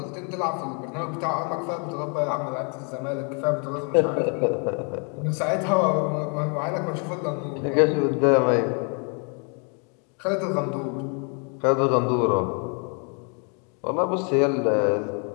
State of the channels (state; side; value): quieter; right; 37.7 dB